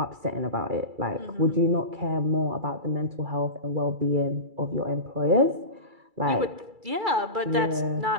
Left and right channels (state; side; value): late; left; 2.3 ms